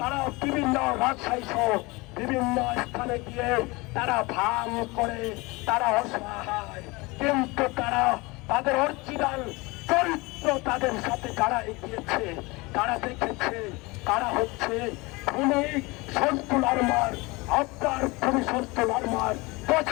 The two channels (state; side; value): quieter; right; 24.4 dB